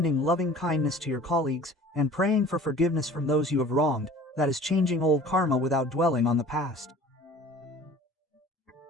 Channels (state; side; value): normal; both; correlation 0.45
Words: loving kindness to your colleagues, and praying for forgiveness from those you have wronged, that is changing old karma without dwelling on the past.